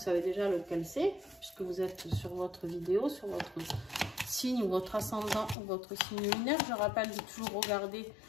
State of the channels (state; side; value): drops out; right; at 5.6 s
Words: déjà lequel c'est, puisque vous êtes sur votre vidéo, sur votre signe ou votre ascendant ou votre signe lunaire. Je rappelle de toujours regarder